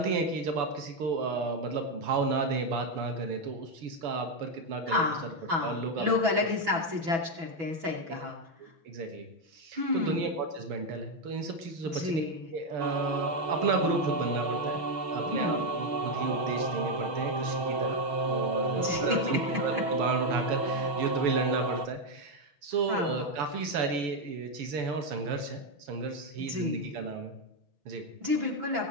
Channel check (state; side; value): late; left; 6.1 ms